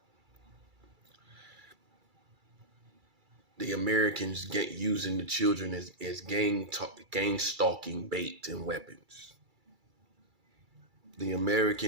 the Americans get using the children as gang stalking bait and weapons. The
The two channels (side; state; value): left; late; 2.3 ms